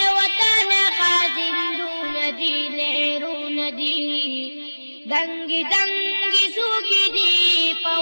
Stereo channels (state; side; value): inverted; both; correlation -1.00